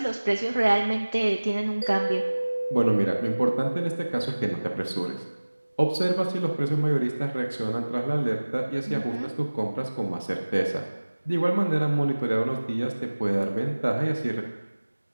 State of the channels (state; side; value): inverted; both; correlation -1.00